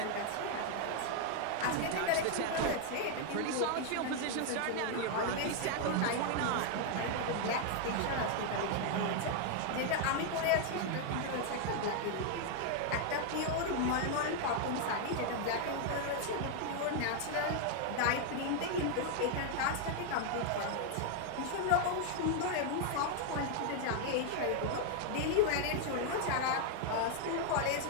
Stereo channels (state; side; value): different; both; correlation 0.00